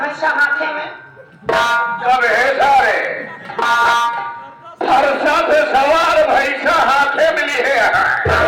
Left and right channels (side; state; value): both; identical; correlation 1.00